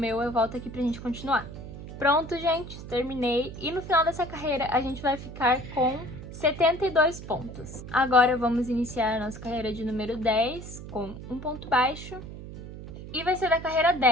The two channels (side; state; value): right; noise; hum, 12 dB below the sound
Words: eu volto aqui pra gente continuar. Pronto, gente, terminei. E no final dessa carreira, a gente vai ficar com 72 pontos. Agora vamos iniciar a nossa carreira de número 10 com um ponto baixo. E vai ser da carreira